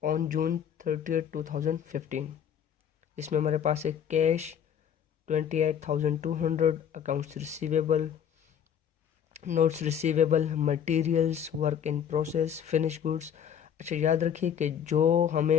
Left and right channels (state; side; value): quieter; right; 8.6 dB